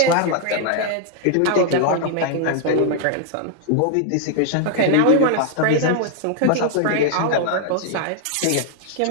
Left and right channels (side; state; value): both; different; correlation 0.00